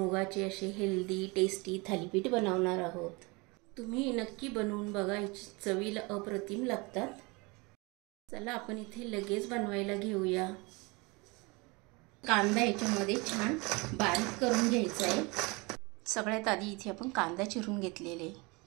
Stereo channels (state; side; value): quieter; left; 26.9 dB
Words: असे हेल्दी टेस्टी थालीपीठ बनवणार आहोत। तुम्ही नक्की बनवून बघा, चवीला अप्रतिम लागतात। चला आपण इथे लगेच बनवायला घेऊया। कांदा याच्यामध्ये छान बारीक करून घ्यायचा आहे। सगळ्यात आधी इथे आपण कांदा चिरून घेतलेले,